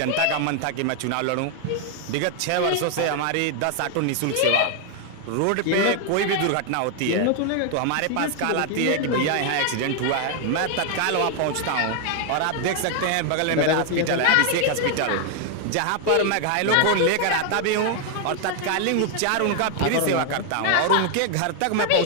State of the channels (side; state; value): both; different; correlation 0.00